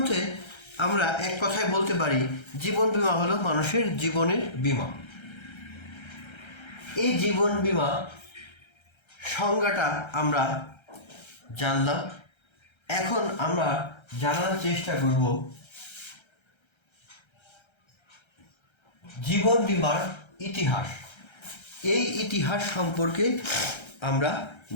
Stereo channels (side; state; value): right; late; 1.3 ms